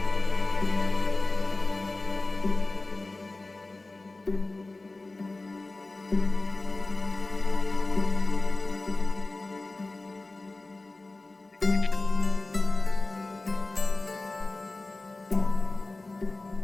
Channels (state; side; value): quieter; right; 3.1 dB